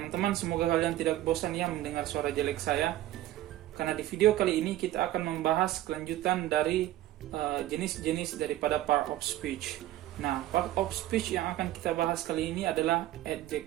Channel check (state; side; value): quieter; left; 14.5 dB